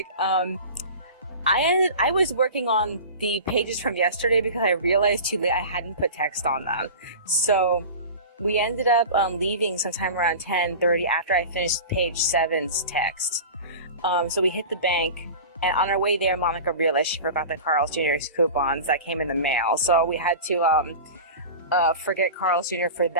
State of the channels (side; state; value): both; inverted; correlation -0.34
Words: I was working on the pages from yesterday because I realized too late I hadn't put text on them. So we ended up leaving sometime around 10:30 after I finished page 7's text. So we hit the bank, and on our way there, Monica realized she forgot the Carl's Jr.'s coupons that came in the mail. So we had to forget Carl's Jr. for